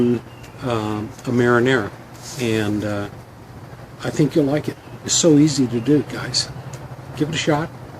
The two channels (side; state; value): both; identical; correlation 1.00